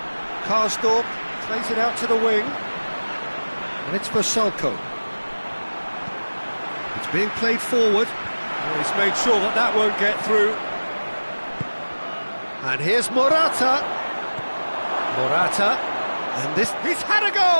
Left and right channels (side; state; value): both; inverted; correlation -1.00